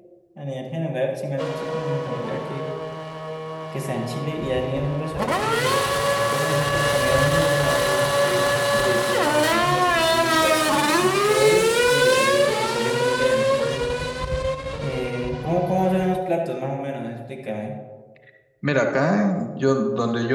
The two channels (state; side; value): identical; both; correlation 1.00